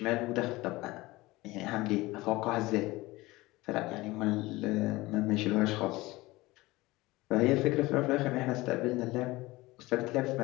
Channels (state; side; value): quieter; right; 20.2 dB